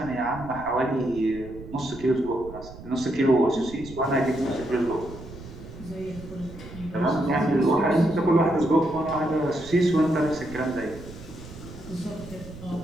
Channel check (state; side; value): noise; right; rumble, 15 dB below the sound